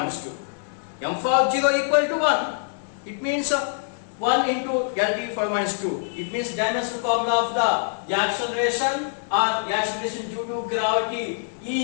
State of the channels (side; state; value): right; silent; 60 dB below the other